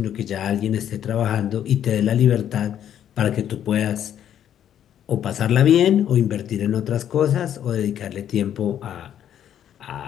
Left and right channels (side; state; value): right; quieter; 10.1 dB